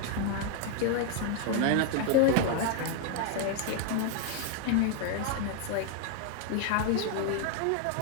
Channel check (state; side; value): different; both; correlation 0.00